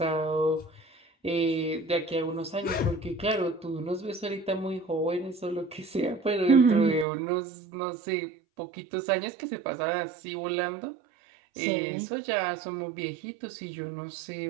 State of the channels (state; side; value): drops out; left; at 7.1 s